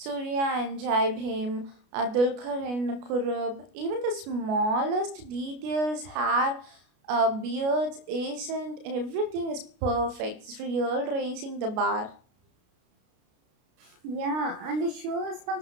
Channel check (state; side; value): late; left; 33 ms